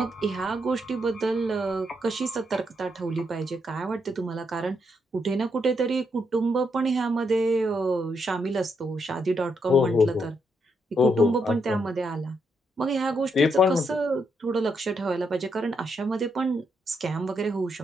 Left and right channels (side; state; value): both; normal; correlation 0.78